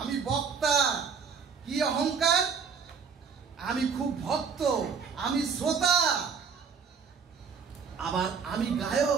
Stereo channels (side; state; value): left; quieter; 6.1 dB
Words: বক্তা। কি অহংকার? আমি খুব ভক্ত, আমি শ্রোতা, আবার আমি